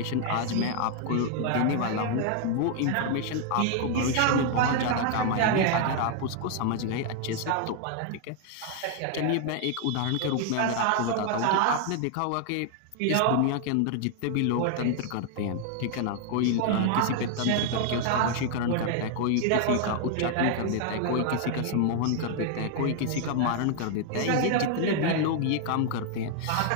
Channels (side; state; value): both; different; correlation 0.00